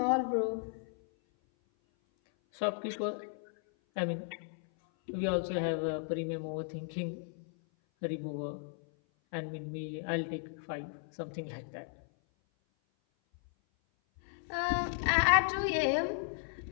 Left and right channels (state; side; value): silent; right; 54 dB below the other